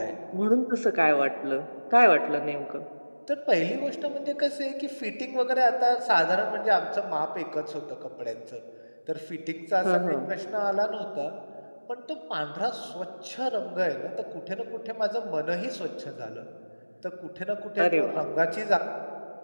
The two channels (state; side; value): inverted; both; correlation -1.00